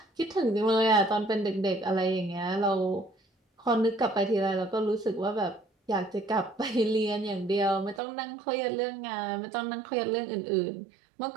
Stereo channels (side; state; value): left; drops out; at 8.0 s